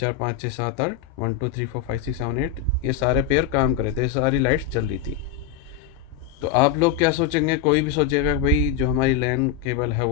5 6 7 8, 1 2 3 4 5 6 7 8, ये सारे पेयर काम कर रहे थे, सारी लाइट्स जल रही थी। तो आप लोग क्या सोचेंगे, कोई भी सोचेगा कि भाई जो हमारी लैन केबल है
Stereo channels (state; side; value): quieter; right; 9.4 dB